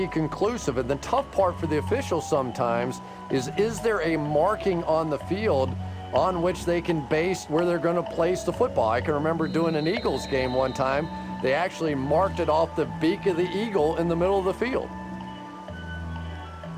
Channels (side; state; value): both; identical; correlation 1.00